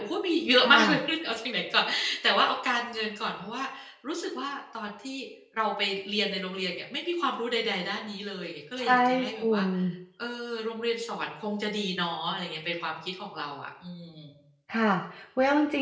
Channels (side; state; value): both; identical; correlation 1.00